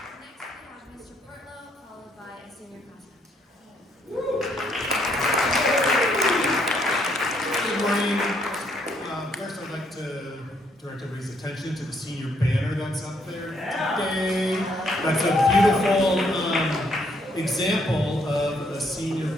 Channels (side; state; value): both; normal; correlation 0.71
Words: Direct everybody's attention to the senior banner that's up there today. That's a beautiful example of a senior